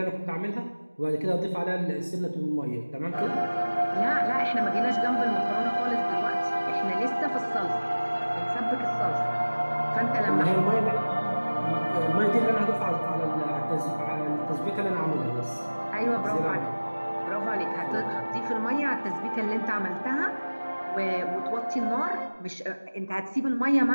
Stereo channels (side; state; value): both; inverted; correlation -1.00